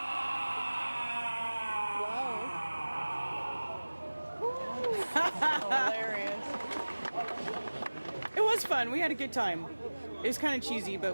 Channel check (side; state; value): both; inverted; correlation -1.00